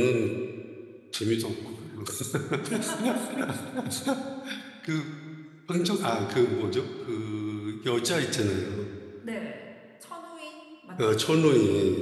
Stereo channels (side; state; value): both; identical; correlation 1.00